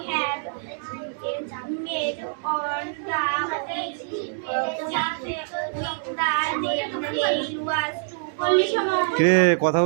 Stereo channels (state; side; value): silent; left; digital silence